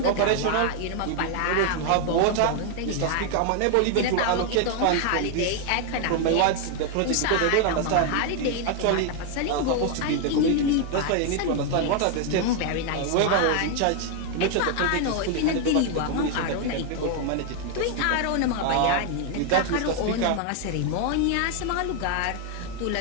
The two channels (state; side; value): different; both; correlation 0.01